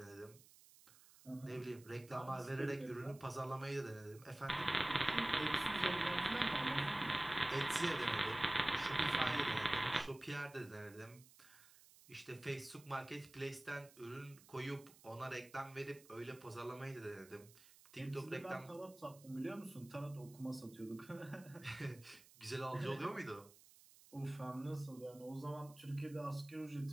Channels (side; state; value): right; noise; hiss, 22 dB below the sound